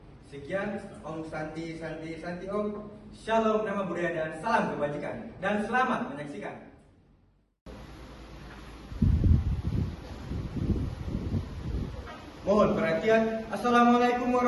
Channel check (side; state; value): both; identical; correlation 1.00